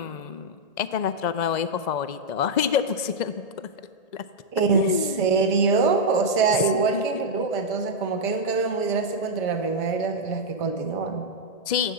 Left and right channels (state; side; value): late; right; 1.8 ms